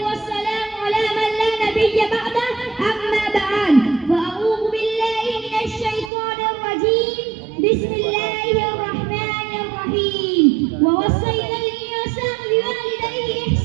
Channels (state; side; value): drops out; left; at 6.1 s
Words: والسلام على من لا نبي بعده أما بعد فأعوذ بالله من الشيطان الرجيم بسم الله الرحمن الرحيم ووصينا الإنسان بوالديه